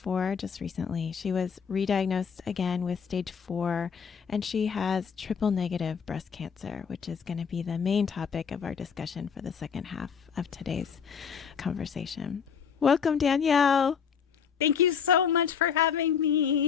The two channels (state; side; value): quieter; right; 6.9 dB